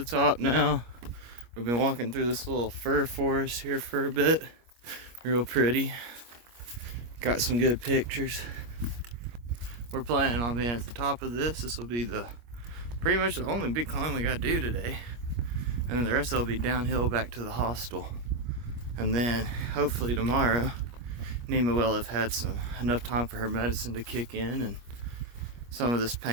top now. We've been walking through this little fir forest here for a bit. Real pretty. Got some good pictures. We're planning on being at the top of this. This will be pretty much the only big climb we gotta do today. And then the rest will be downhill back to the hostel. And then hopefully tomorrow, Nemo will have had enough time for her medicine to kick in and some of this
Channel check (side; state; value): left; late; 25 ms